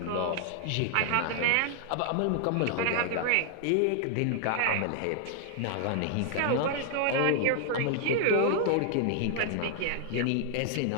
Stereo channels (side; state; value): both; different; correlation 0.00